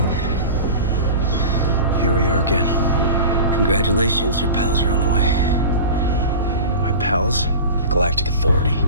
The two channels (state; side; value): inverted; both; correlation -0.32